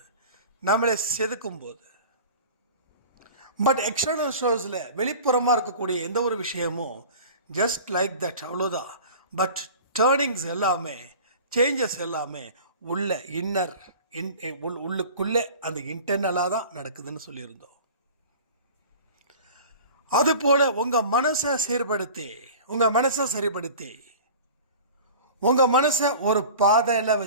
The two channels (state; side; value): inverted; both; correlation -0.40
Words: நம்மளை செதுக்கும் போது. பட் எக்ஸ்டர்னல் ஷோஸில் வெளிப்புறமாக இருக்கக்கூடிய எந்த ஒரு விஷயமும் ஜஸ்ட் லைக் தட், அவ்வளோதான். பட் டேர்னிங்ஸ் எல்லாமே, சேஞ்சஸ் எல்லாமே உள்ள இன்னர் உள்ளுக்குள்ளே அந்த இன்டர்னலாக தான் நடக்குதுன்னு சொல்லியிருந்தோம். அதுபோல் உங்கள் மனசை சீர்படுத்தி, உங்கள் மனசை சரிப்படுத்தி, உங்கள் மனசை ஒரு பாதையில்